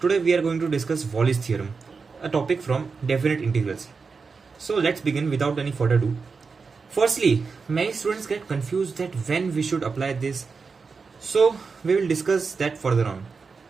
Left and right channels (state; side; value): quieter; left; 4.9 dB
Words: we are going to discuss Wallis theorem, a topic from definite integrals. So let's begin without any further ado. Firstly, many students get confused that when we should apply this. So we will discuss that further on.